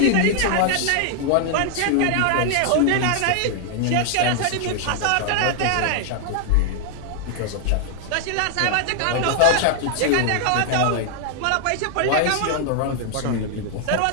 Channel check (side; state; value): both; different; correlation 0.00